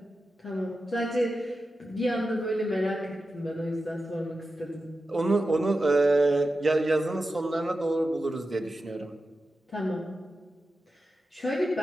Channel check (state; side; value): normal; both; correlation 0.91